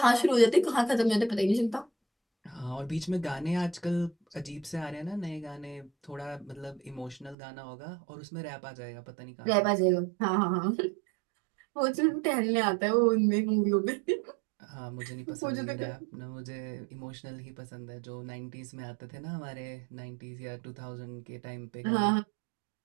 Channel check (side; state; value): left; drops out; at 7.4 s